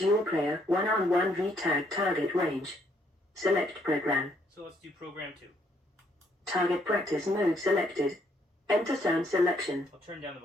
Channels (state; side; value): normal; both; correlation 0.70